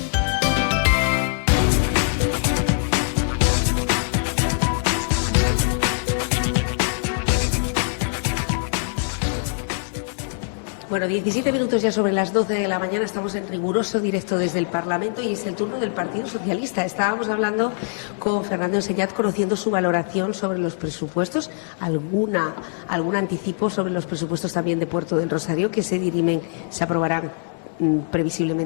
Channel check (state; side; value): silent; right; 64 dB below the other